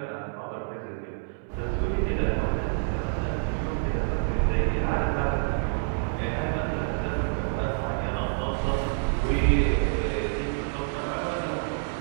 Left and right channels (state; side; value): silent; left; digital silence